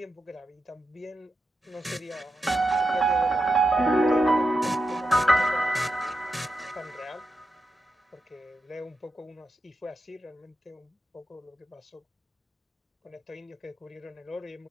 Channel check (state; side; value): normal; both; correlation 0.86